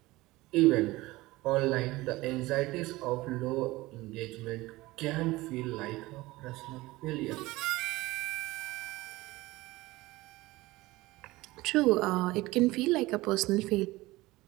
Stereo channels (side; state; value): left; quieter; 19.7 dB